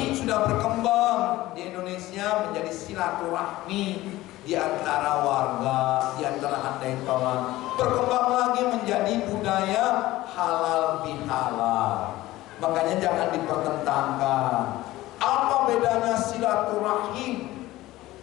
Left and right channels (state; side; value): quieter; right; 17.1 dB